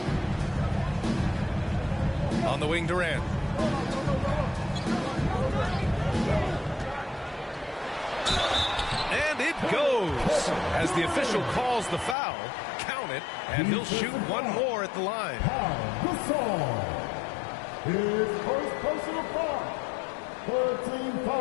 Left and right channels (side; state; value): right; drops out; at 12.2 s